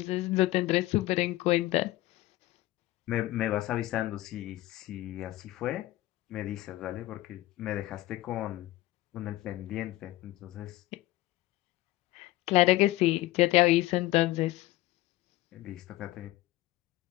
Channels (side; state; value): right; quieter; 17.5 dB